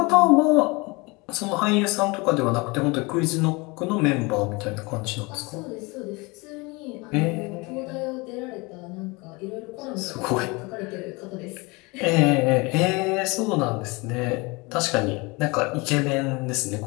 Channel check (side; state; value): right; quieter; 26.1 dB